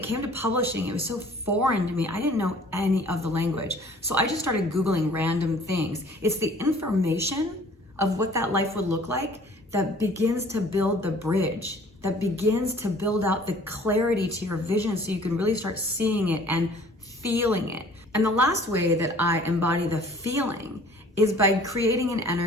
came to publishing, it was so foreign to me. I didn't know any of the language. So I just started Googling random things. It's the information of what that life would look like that begins to build the bridge, that begins to build out the clarity to your vision so you can really start seeing it and feeling it. And the last way that I embody the feeling is by creating an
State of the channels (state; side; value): normal; both; correlation 0.52